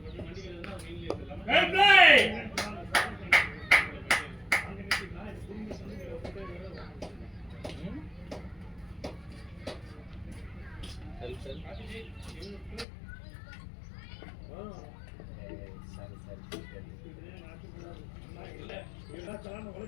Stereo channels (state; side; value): drops out; right; at 12.9 s